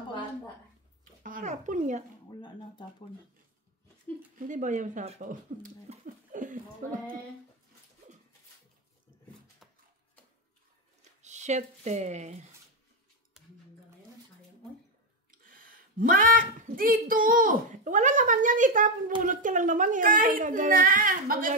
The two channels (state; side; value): normal; both; correlation 0.06